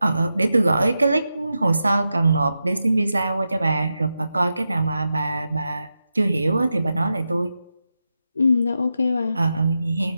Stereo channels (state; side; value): inverted; both; correlation -0.89